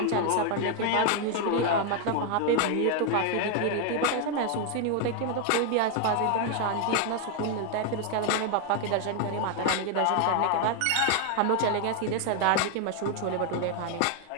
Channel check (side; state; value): both; different; correlation 0.00